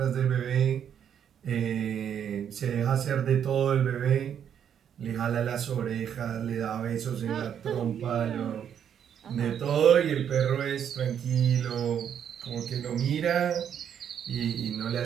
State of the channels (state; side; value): quieter; left; 8.7 dB